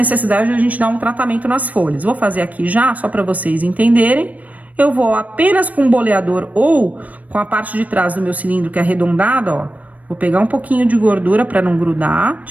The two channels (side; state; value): left; late; 0.072 ms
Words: de a gente dar um tratamento nas folhas. Vou fazer aqui já, só para vocês entenderem. Eu vou apenas com o boleador ou com a parte de trás do meu cilindro que é arredondada, ó. Vou pegar um pouquinho de gordura para não grudar,